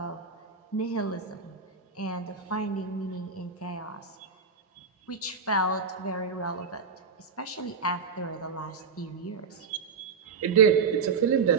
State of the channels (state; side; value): quieter; left; 5.3 dB